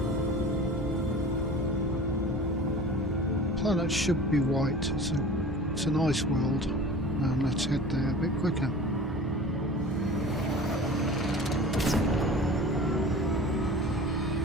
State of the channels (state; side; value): normal; both; correlation 0.39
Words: Planet should be white. It's an ice world, and let's head there a bit quicker.